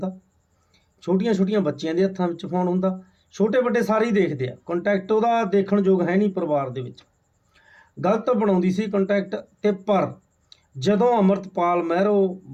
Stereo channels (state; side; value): identical; both; correlation 1.00